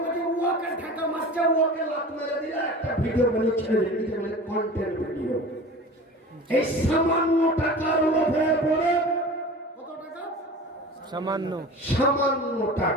বলছে ওকে ঠাকা মারছে, ওকে লাত মেরে দিলে একটা ভিডিও বানিয়ে ছেড়ে দিতে বলে কন্টেন্ট ভিডিও। এই সামান্য টাকার লোভে পড়ে, কত টাকা? সামান্য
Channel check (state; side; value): normal; both; correlation 0.37